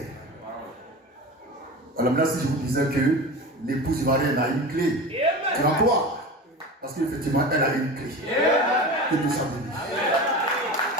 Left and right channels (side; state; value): both; normal; correlation 0.31